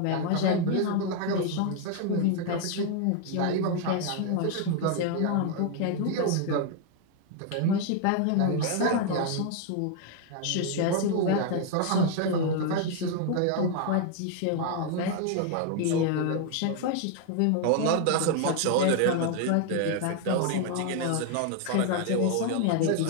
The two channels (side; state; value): both; different; correlation 0.00